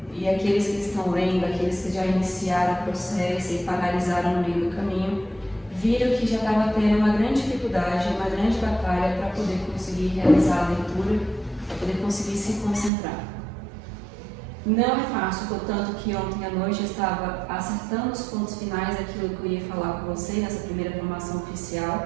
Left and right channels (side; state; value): left; drops out; at 12.9 s